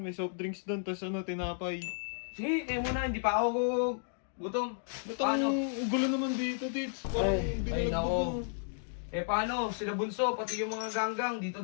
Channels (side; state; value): right; silent; digital silence